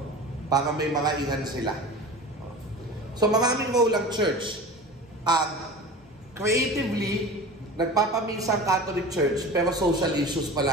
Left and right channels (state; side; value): normal; both; correlation 0.35